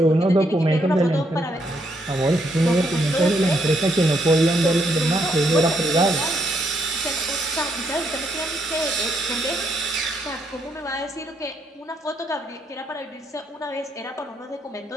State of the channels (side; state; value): both; normal; correlation 0.75